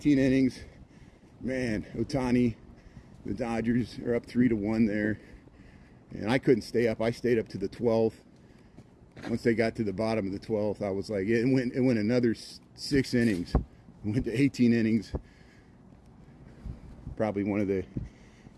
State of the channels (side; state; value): both; identical; correlation 1.00